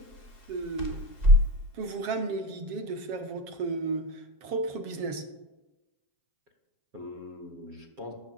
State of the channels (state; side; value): late; left; 7.4 ms